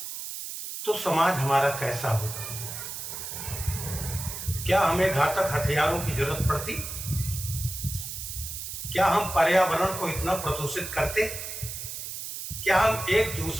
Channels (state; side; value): noise; right; hiss, 7 dB below the sound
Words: तो समाज हमारा कैसा होगा। क्या हमें घातक हथियारों की जरूरत पड़ती? क्या हम पर्यावरण को इतना प्रदूषित करते? क्या हम एक